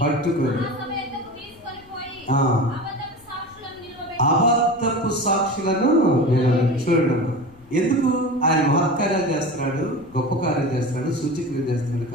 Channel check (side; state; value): left; noise; rumble, 27 dB below the sound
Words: అబద్ధపు సాక్షులను చూడడం. ఎందుకు? ఆయన మహత్కార్యాలు చేస్తున్నాడు, గొప్ప కార్యాలు చేస్తున్నాడు, సూచక్రియలు చేస్తున్నాడు.